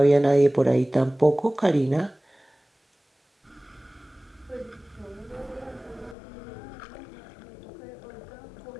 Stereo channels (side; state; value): right; drops out; at 6.2 s